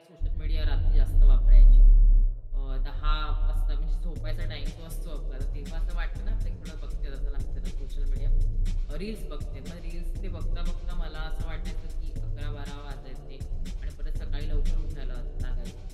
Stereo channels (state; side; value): identical; both; correlation 1.00